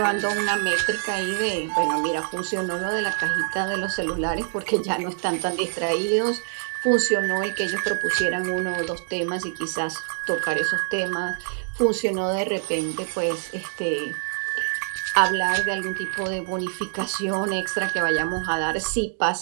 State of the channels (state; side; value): silent; left; digital silence